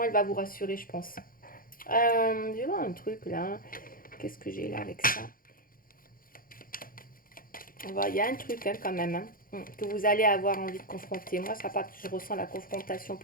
elle va vous rassurer, je pense. Je vais voir un truc là. Qu'est-ce que j'ai là avec ça? On va, il y a un truc hein, quand même hein, que vous allez avoir envie de confronter. Moi, ça part, je ressens la confrontation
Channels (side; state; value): right; late; 0.41 ms